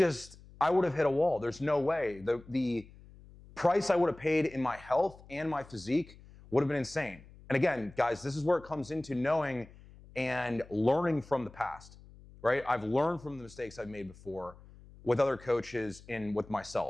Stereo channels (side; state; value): left; noise; hum, 21 dB below the sound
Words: I would have hit a wall. There's no way. The price I would have paid in my health and my physique would have been insane. And again, guys, this is where it comes into knowing and learning from the past, right? I've learned from the mistakes I've made before with other coaches and with